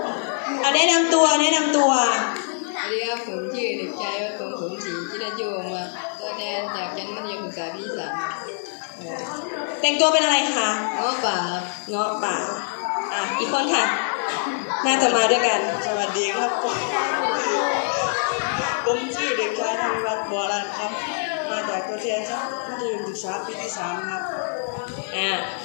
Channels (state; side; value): silent; right; 63 dB below the other